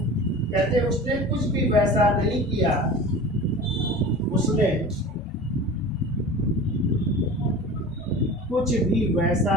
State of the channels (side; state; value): both; normal; correlation 0.36